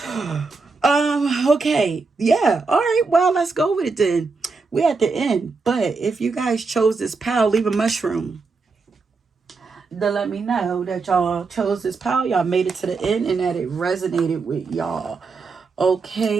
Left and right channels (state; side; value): quieter; left; 4.3 dB